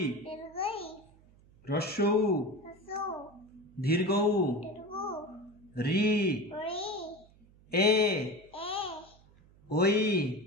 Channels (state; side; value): noise; right; hum, 27 dB below the sound